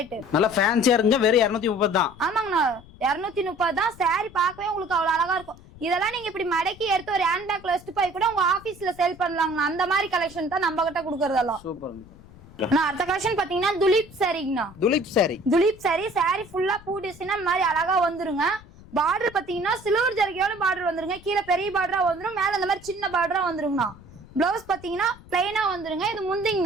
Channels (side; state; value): left; noise; rumble, 21 dB below the sound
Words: நல்ல ஃபேன்சியா இருக்குங்க. வெறும் 230 தான். ஆமாங்கண்ணா 230 தான். சாரி பார்க்கவே உங்களுக்கு அவ்வளவு அழகா இருக்கும். இதெல்லாம் நீங்க இப்படி மடக்கி எடுத்து ஒரு ஹேண்ட் பேக்ல வச்சுட்டு போய் கூட உங்க ஆபீஸ்ல சேல் பண்ணலாங்கண்ணா. அந்த மாதிரி கலெக்ஷன் தான் நம்ம கிட்ட கொடுக்கறதெல்லாம். சூப்பர். அடுத்த கலெக்ஷன் பாத்தீங்கன்னா துலீப் சாரிங்கண்ணா. துலீப் சாரி ஃபுல்லா பூ டிசைன் மாதிரி அழகா வந்துருங்க. பார்டர் பாத்தீங்கன்னா சில்வர் ஜரிகையோட பார்டர் வந்துருங்க. கீழே பெரிய பார்டரா வந்துரும். மேல இந்த மாதிரி சின்ன பார்டரா வந்துருங்கண்ணா. பிளவுஸ் பாத்தீங்கன்னா பிளைனா வந்துருங்க. இது